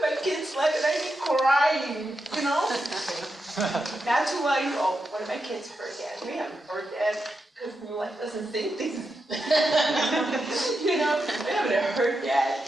my kids' life, and I'd be crying, Not too long ago, one of my kids heard that. We haven't heard that because New Life doesn't sing things. We haven't heard that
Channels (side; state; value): both; normal; correlation 0.87